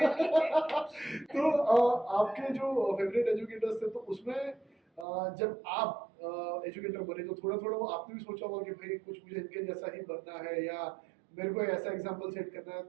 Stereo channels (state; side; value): drops out; left; at 5.1 s